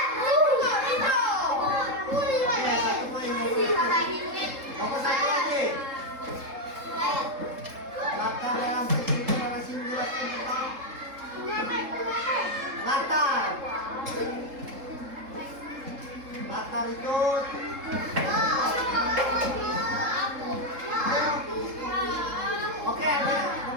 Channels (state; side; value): late; left; 3.7 ms